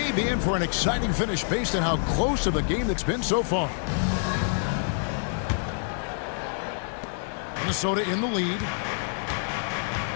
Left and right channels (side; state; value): right; silent; 60 dB below the other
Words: be in for an exciting finish based on how close of a game that's been so far. Minnesota in the lead.